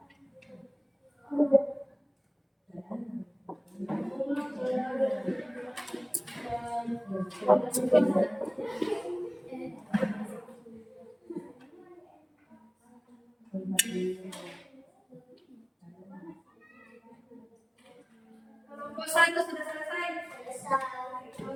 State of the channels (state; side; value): identical; both; correlation 1.00